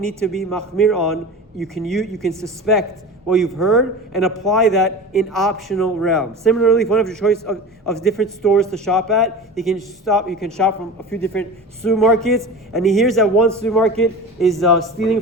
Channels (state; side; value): normal; both; correlation 0.33